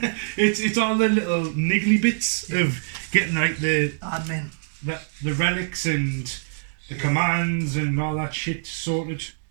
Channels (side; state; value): left; silent; digital silence